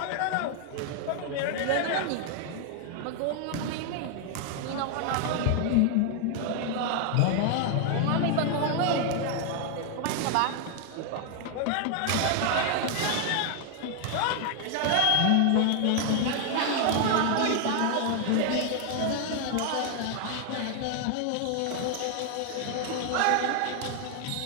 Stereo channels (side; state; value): both; different; correlation 0.00